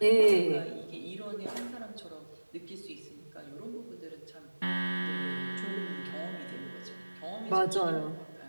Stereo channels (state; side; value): inverted; both; correlation -1.00